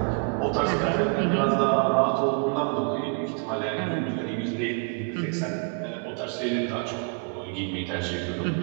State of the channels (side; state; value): left; quieter; 37.7 dB